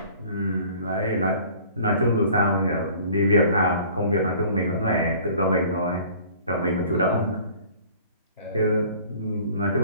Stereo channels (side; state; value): both; inverted; correlation -0.50